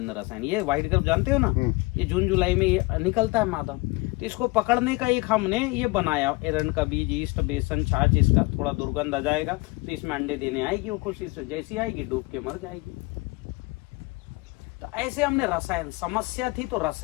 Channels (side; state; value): right; quieter; 24.5 dB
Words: रसायन, ये व्हाइट क्रब जानते हो ना, ये जून जुलाई में ये निकलता है मादा। तो इसको पकड़ने का एक हमने ये बनाया, एरंड का बीज, ईस्ट, बेसन, छाछ, इसका थोड़ा दुर्गंध आ जाएगा तो इसमें अंडे देने आएगी वो, खुशी से जैसी आएगी डूब के मर जाएगी। तो ऐसे हमने रसायन, समस्या थी तो